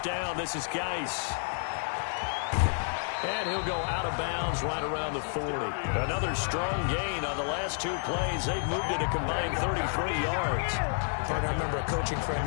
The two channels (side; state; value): right; silent; 58 dB below the other